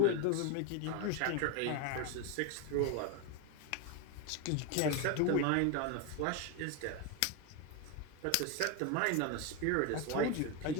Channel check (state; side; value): different; both; correlation 0.02